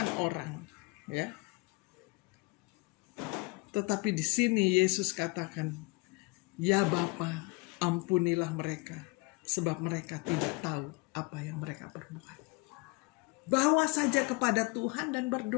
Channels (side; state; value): right; quieter; 26.2 dB